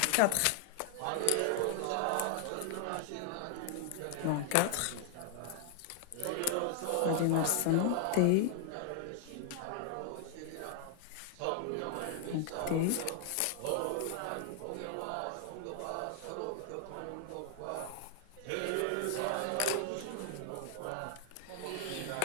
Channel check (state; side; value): different; both; correlation 0.00